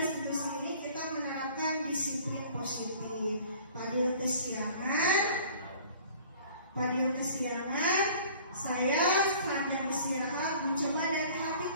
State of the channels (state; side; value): inverted; both; correlation -0.50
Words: ini kita menerapkan disiplin positif. Fadil kesiangan, saya sambil istirahat mencoba dari hati